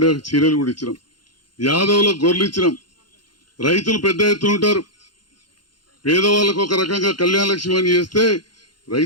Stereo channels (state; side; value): late; right; 0.71 ms